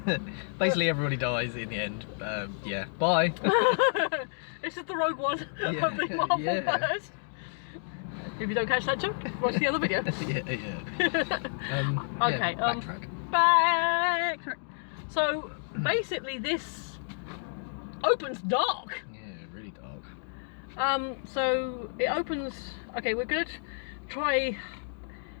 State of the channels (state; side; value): silent; right; digital silence